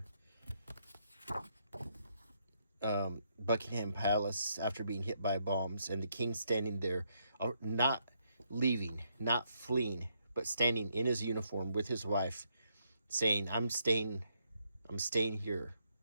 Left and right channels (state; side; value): inverted; both; correlation -0.76